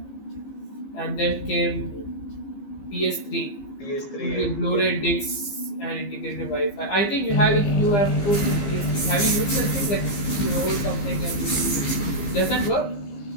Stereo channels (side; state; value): right; late; 15 ms